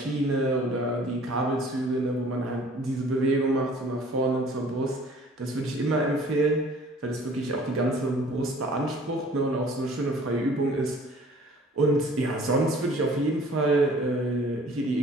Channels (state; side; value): normal; both; correlation 0.51